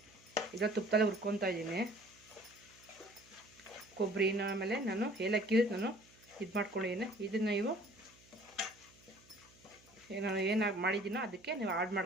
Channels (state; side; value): noise; right; hum, 27 dB below the sound